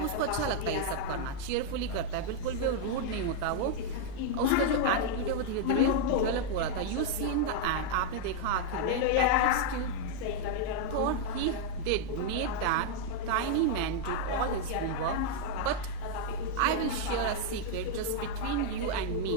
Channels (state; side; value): different; both; correlation 0.00